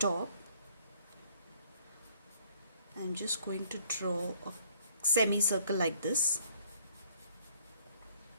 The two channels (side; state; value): both; inverted; correlation -0.62